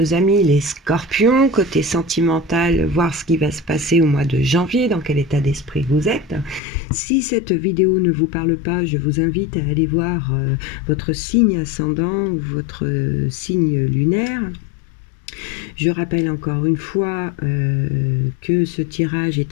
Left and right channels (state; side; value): drops out; right; at 6.6 s